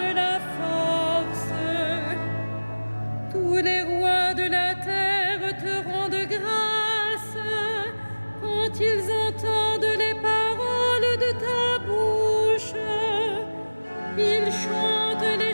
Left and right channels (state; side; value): inverted; both; correlation -1.00